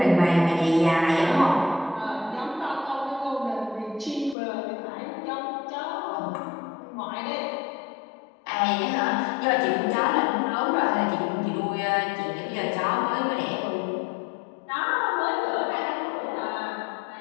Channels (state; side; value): drops out; right; at 4.4 s